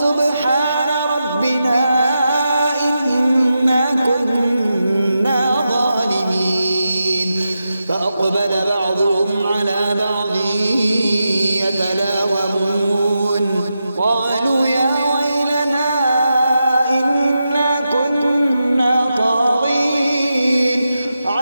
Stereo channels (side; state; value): both; inverted; correlation -0.88